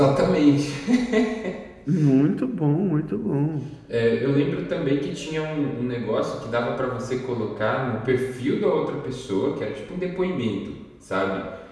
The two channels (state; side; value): identical; both; correlation 1.00